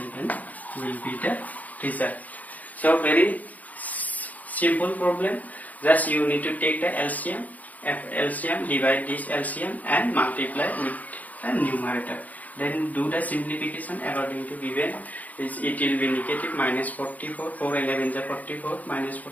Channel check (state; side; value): late; right; 0.077 ms